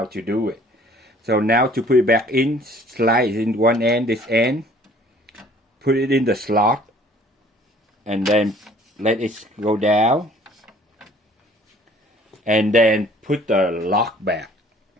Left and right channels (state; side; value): normal; both; correlation 0.55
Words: to do it. So now to put it back in, slide in one end, this end, put it in the slot, and then let it go down, and then put the lock back.